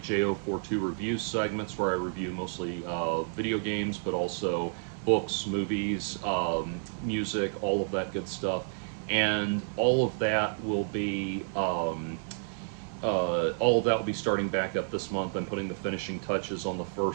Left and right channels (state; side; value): silent; left; digital silence